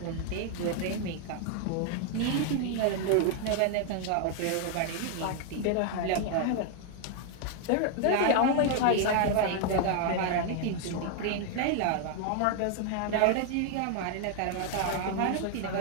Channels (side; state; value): both; different; correlation 0.00